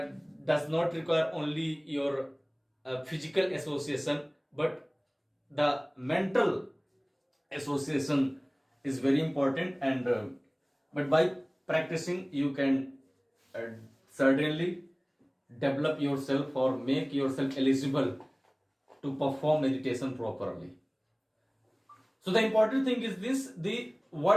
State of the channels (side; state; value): both; identical; correlation 1.00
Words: does not require only your physical association, but the mental association is very important. And but by practicing you can certainly develop yourself or make yourself eligible to perform meditation properly. So the important thing is this: the